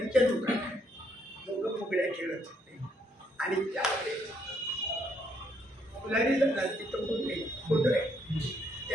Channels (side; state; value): both; normal; correlation 0.72